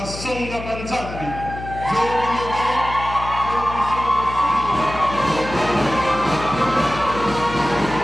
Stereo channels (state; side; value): noise; left; hum, 10 dB below the sound